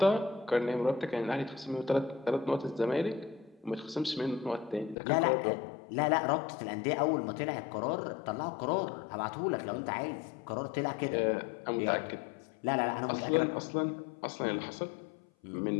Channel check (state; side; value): drops out; right; at 5.0 s